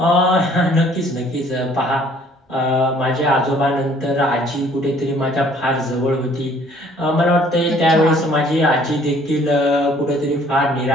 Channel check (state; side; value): normal; both; correlation 0.58